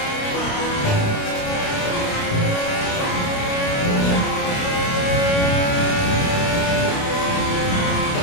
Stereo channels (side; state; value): right; late; 29 ms